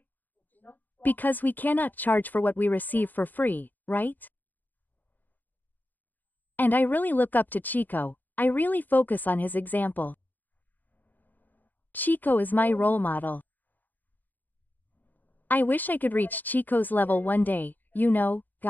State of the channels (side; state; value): right; late; 0.086 ms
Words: Because we cannot charge for what we receive for free, right? And I really look up to Chico, I really focus on his example. Chico is my role model. I wish I could reach Chico's level one day, you know,